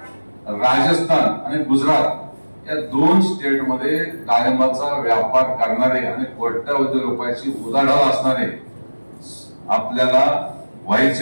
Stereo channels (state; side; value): inverted; both; correlation -1.00